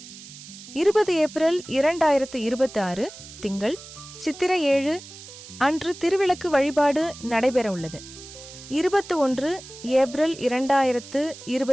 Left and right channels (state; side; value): noise; right; hiss, 16 dB below the sound